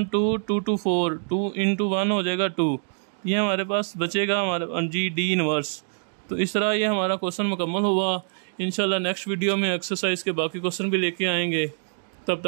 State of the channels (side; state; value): left; silent; digital silence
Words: 2 2 2 4 2 × 1 हो जाएगा 2, ये हमारे पास बचेगा हमारा जी डी इनवर्स। तो इस तरह ये हमारा क्वेश्चन मुकम्मल हुआ। इंशाल्लाह नेक्स्ट वीडियो में एक्सरसाइज के बाकी क्वेश्चन भी लेके आएंगे। तब